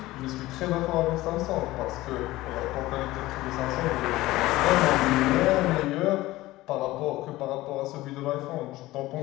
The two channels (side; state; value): right; quieter; 17.8 dB